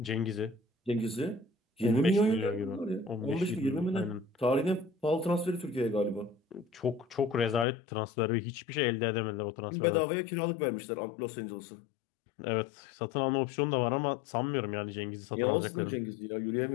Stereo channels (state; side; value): drops out; right; at 7.7 s